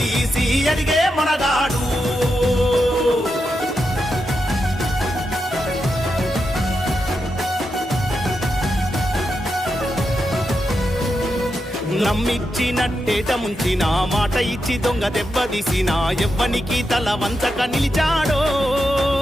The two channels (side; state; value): both; normal; correlation 0.86